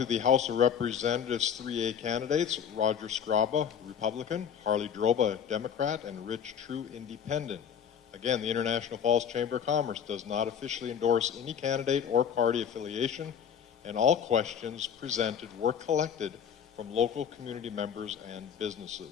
the House of Representatives 3A candidates: Roger Scraba, Republican; Harley Droba, Democrat; and Rich True, Independent. Again, the International Falls Chamber of Commerce does not officially endorse any candidate or party affiliation, and all questions presented were collected from local community members and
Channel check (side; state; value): right; quieter; 8.0 dB